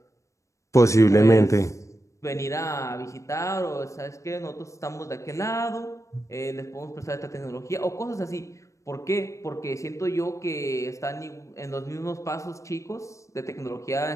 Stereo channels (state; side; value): late; right; 0.15 ms